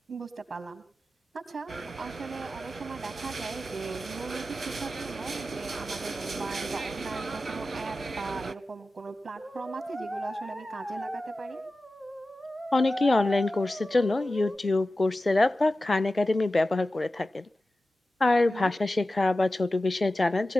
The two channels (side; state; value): both; normal; correlation 0.94